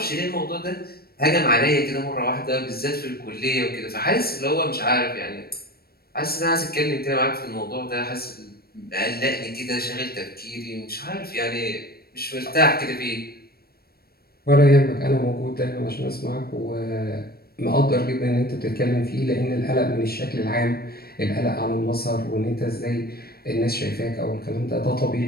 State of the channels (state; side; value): late; right; 0.45 ms